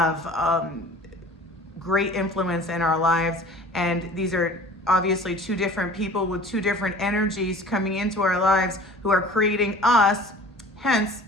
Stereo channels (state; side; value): normal; both; correlation 0.45